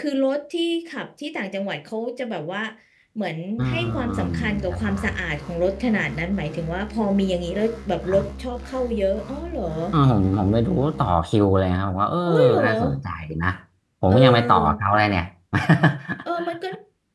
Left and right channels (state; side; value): identical; both; correlation 1.00